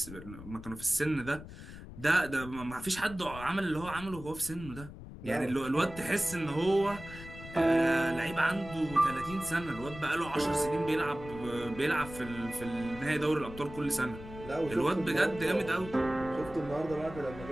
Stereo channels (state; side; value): noise; left; rumble, 13 dB below the sound